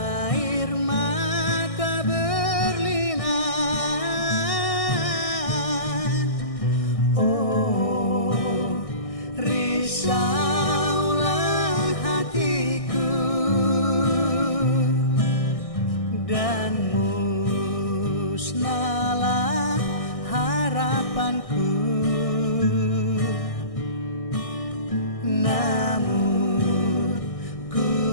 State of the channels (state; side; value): late; right; 1.6 ms